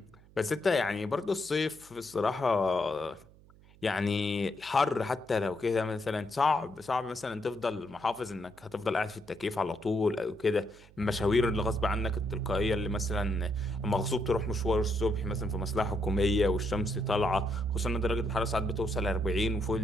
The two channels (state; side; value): noise; right; hum, 25 dB below the sound